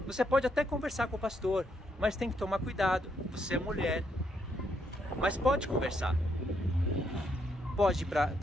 você pode até conversar com o pastor, mas tem que tomar cuidado. Você é mulher, mas pode conversar. Pode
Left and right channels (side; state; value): both; normal; correlation 0.76